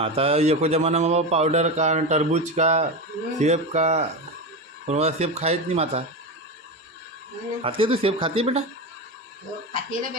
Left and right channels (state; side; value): normal; both; correlation 0.19